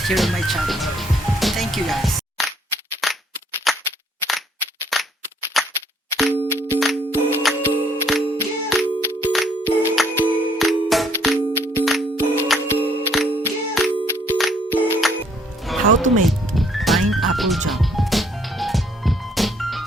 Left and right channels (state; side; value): normal; both; correlation 0.65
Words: here on my channel. Thank you guys. How to make pineapple jam.